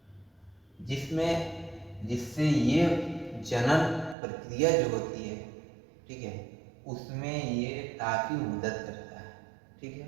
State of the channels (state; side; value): drops out; left; at 4.2 s